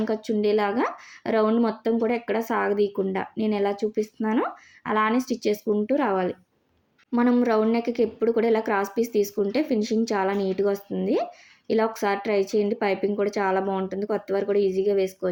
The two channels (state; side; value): identical; both; correlation 1.00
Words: ఖర్చు ఉండేలాగా రౌండ్ మొత్తం కూడా ఎక్కడ సాగదీయకుండా నేను ఎలా చూపిస్తున్నానో అలానే స్టిచ్ చేసుకుంటూ రావాలి. మనం రౌండ్ నెక్కి ఎప్పుడు కూడా ఇలా క్రాస్ పీస్ తీసుకుంటే ఫినిషింగ్ చాలా నీట్గా వస్తుంది. ఇలా ఒకసారి ట్రై చేయండి, పైపింగ్ కూడా చాలా బాగుంటుంది. కొత్త వారు కూడా ఈజీగా